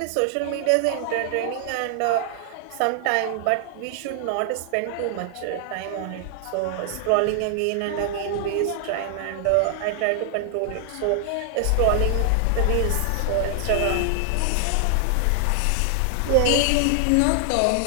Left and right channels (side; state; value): both; different; correlation 0.00